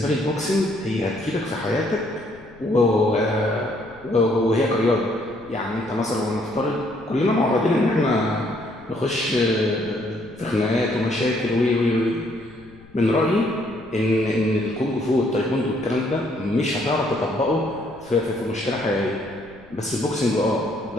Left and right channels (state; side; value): noise; left; rumble, 24 dB below the sound